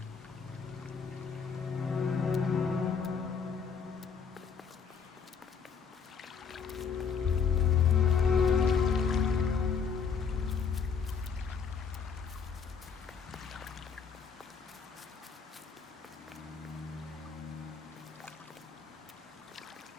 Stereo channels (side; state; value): right; quieter; 6.1 dB